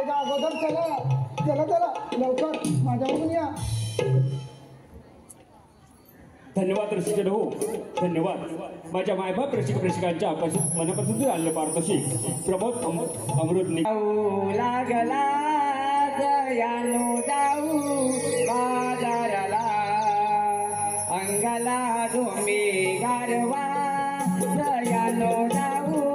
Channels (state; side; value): identical; both; correlation 1.00